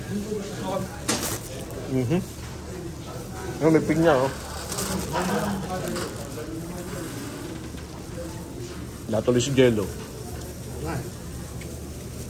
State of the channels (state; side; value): identical; both; correlation 1.00